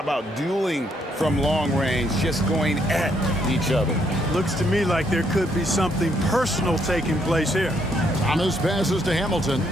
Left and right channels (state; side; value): normal; both; correlation 0.72